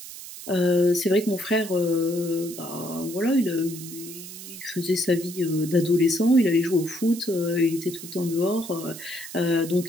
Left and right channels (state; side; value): noise; right; hiss, 13 dB below the sound